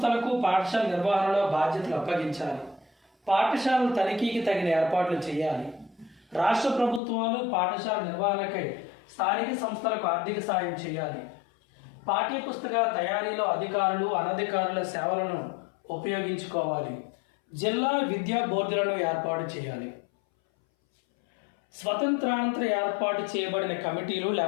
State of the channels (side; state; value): right; drops out; at 7.0 s